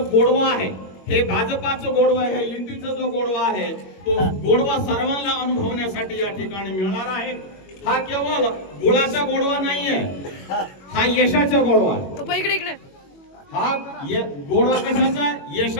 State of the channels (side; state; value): right; late; 21 ms